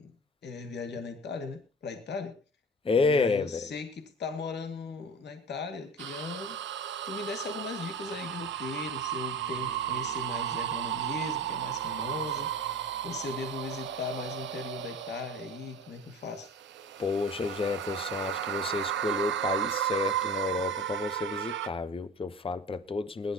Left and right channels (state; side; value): normal; both; correlation 0.35